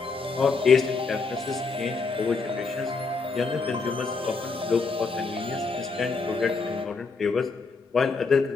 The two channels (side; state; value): right; quieter; 4.3 dB